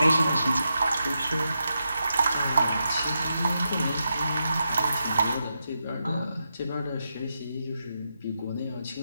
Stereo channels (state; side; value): inverted; both; correlation -0.86